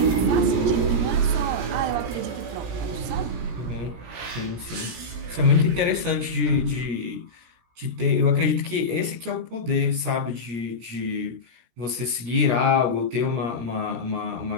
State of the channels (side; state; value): left; late; 17 ms